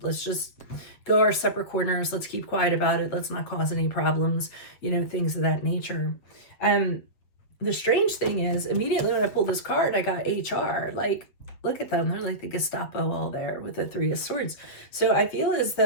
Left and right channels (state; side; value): late; right; 8.2 ms